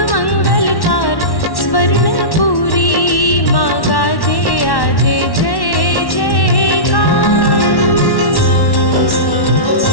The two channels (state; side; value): late; right; 1.1 ms